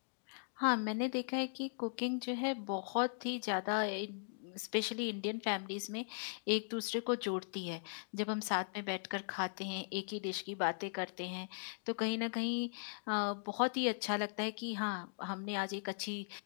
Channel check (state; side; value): silent; right; digital silence